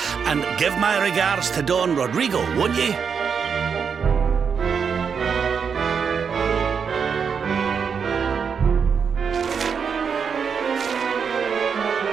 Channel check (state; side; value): quieter; left; 6.4 dB